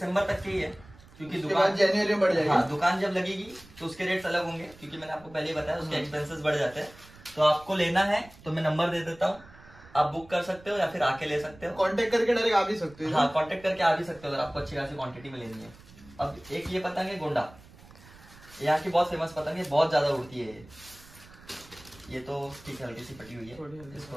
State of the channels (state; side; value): noise; right; rumble, 22 dB below the sound